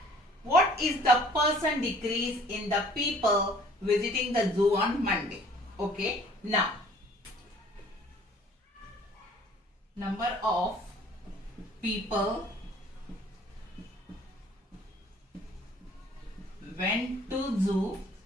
What is the percent decrease in the people visiting the zoo on Monday? Okay, now number of people went to zoo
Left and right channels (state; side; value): normal; both; correlation 0.54